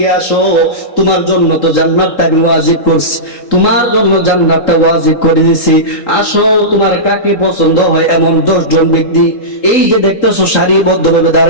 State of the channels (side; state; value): right; late; 3.8 ms